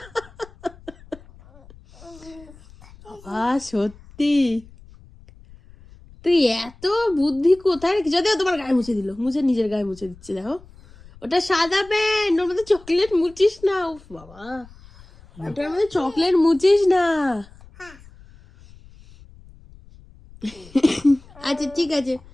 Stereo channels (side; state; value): left; noise; rumble, 23 dB below the sound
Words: সত্যি তুই এত বুদ্ধি কোথায় রেখে? যদিও তোমার গায়ে মুছে দিল, মুছে নিজের গায়ে মুছে দিচ্ছে দেখো। ওটা সাদা প্যান্ট, ওর মধ্যে চকলেট মুছিস না। উফ বাবা, ওটার মধ্যে চকলেট মুছিস না। আচ্ছা ঠিক আছে,